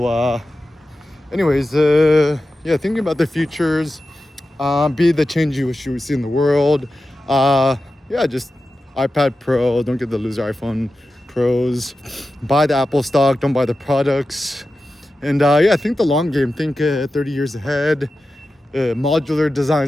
anyways, yeah, thinking about the futures. Be the change you wish you would see in the world. Yeah, just iPad Pro. Don't get the loser iPhone Pros. Buy the Apple stock. Don't buy the products. And yeah, think the long game. Think 30 years ahead. Modular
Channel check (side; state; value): both; normal; correlation 0.93